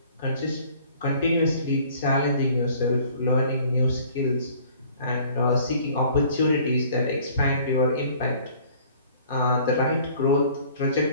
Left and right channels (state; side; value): inverted; both; correlation -0.53